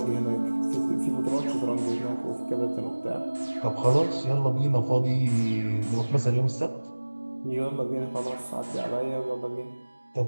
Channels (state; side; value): inverted; both; correlation -1.00